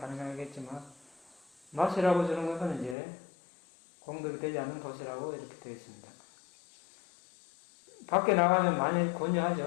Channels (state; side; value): drops out; right; at 3.0 s